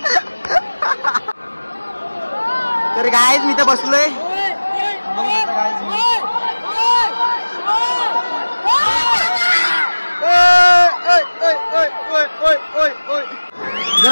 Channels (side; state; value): both; inverted; correlation -1.00